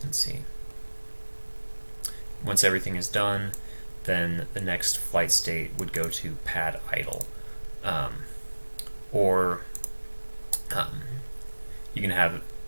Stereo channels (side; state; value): both; inverted; correlation -1.00